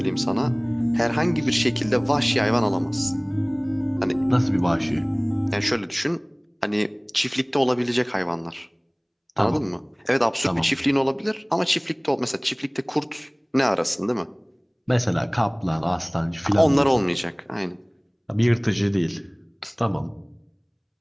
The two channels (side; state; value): both; identical; correlation 1.00